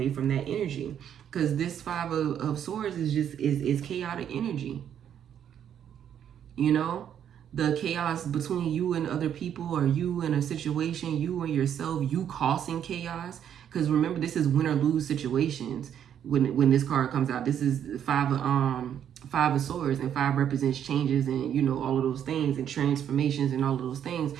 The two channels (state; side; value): quieter; left; 9.3 dB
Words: from that energy because this 5 of Swords is chaotic energy. The chaos between you and other people, or you and a situation, you and yourself, you causing chaos. Because remember, this is win or lose situations. When this card comes out, this is 5 of Swords, and 5 represents changes and all of those things and transformations and all of those things.